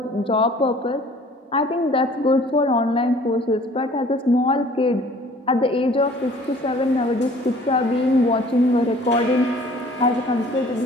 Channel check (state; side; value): normal; both; correlation 0.52